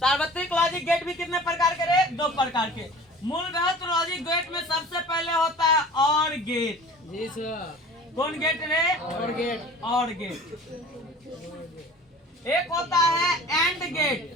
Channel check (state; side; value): normal; both; correlation 0.43